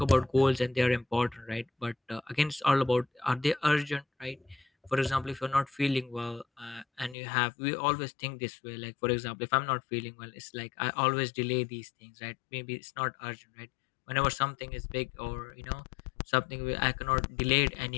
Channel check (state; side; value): drops out; right; at 7.2 s